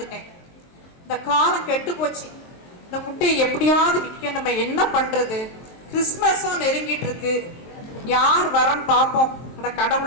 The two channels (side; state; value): right; late; 23 ms